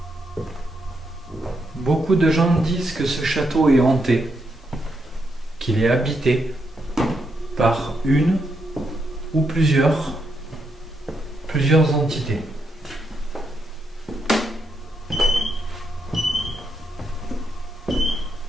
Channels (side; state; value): both; normal; correlation 0.80